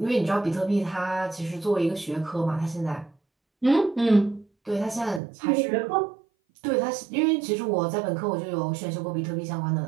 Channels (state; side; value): drops out; left; at 5.2 s